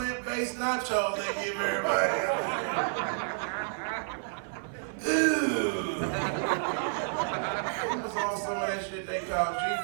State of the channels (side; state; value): left; silent; 58 dB below the other